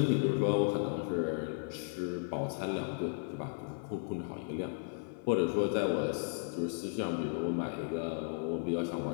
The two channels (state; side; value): silent; right; 55 dB below the other